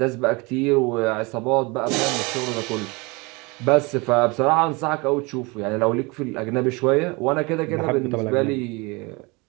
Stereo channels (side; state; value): left; quieter; 26.9 dB